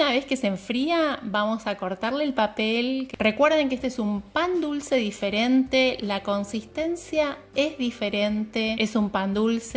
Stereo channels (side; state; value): both; identical; correlation 1.00